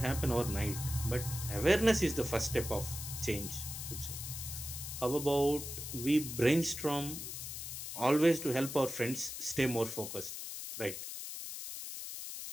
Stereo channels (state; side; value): noise; left; hiss, 7 dB below the sound